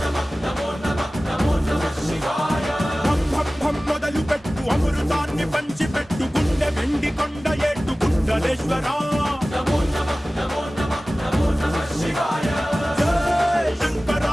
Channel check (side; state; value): both; normal; correlation 0.97